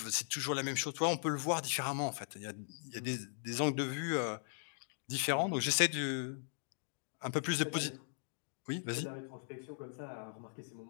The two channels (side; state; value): right; silent; digital silence